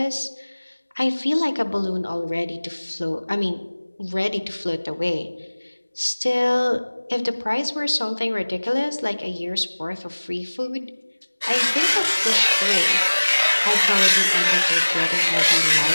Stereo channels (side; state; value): both; inverted; correlation -1.00